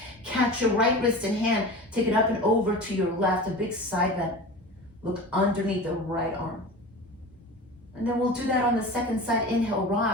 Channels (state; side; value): normal; both; correlation 0.33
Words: Catch your right wrist and hand. Take it up and over to your left, a big side bend. Look underneath the right arm. And then we'll do that on the second side. Inhale,